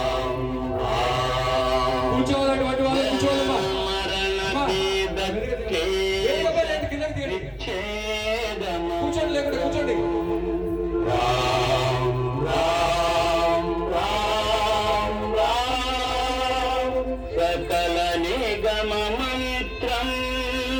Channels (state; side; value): identical; both; correlation 1.00